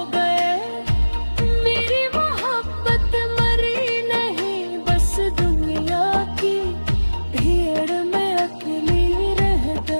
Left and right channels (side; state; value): both; inverted; correlation -1.00